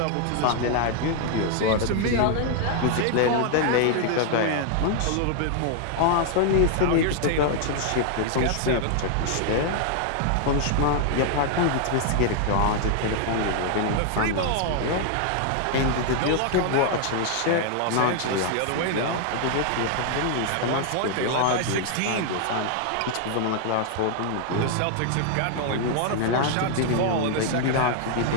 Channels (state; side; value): different; both; correlation 0.00